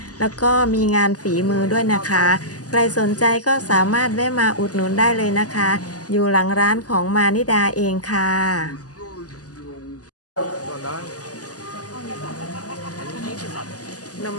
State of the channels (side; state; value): right; late; 0.67 ms